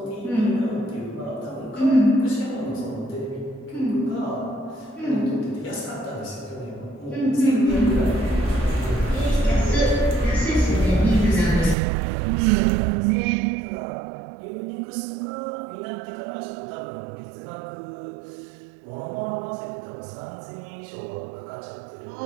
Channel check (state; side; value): drops out; left; at 11.8 s